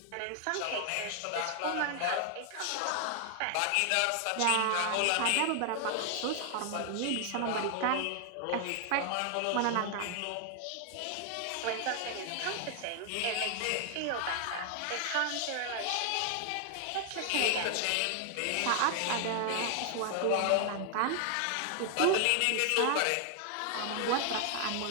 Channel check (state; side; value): different; both; correlation 0.00